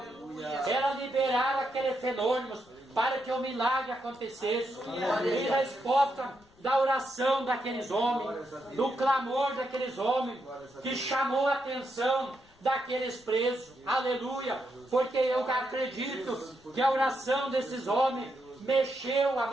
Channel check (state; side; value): noise; left; rumble, 30 dB below the sound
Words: era liberar aquele fenômeno para que o milagre acontecesse. Em resposta da oração daqueles homens, do clamor daqueles homens, que chamou a atenção daqueles presos. Aleluia! Porque eu acredito que a oração desses homens mexeu a